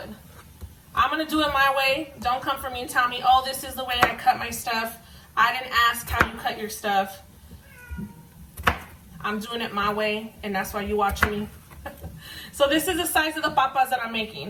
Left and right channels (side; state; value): both; identical; correlation 1.00